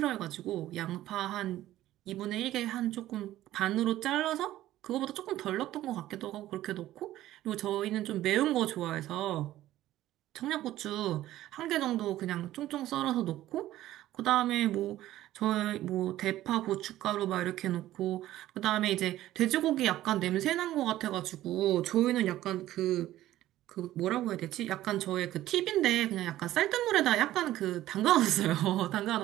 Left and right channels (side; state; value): left; quieter; 14.4 dB